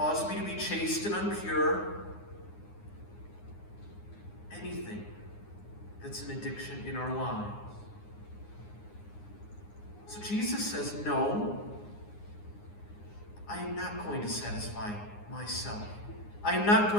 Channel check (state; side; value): late; right; 9.7 ms